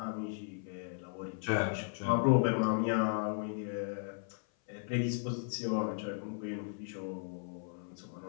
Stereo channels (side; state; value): right; silent; 54 dB below the other